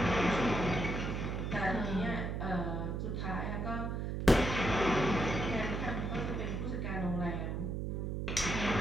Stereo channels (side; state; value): right; noise; hum, 2 dB below the sound